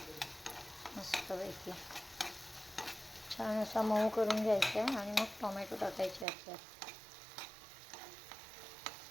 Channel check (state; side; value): drops out; left; at 6.2 s